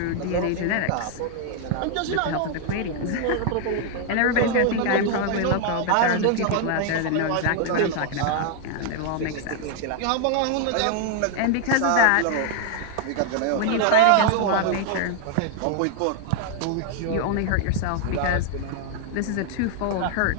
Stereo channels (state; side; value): different; both; correlation 0.00